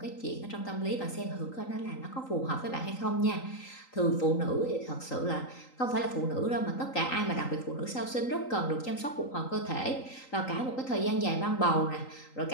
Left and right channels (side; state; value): right; late; 3.8 ms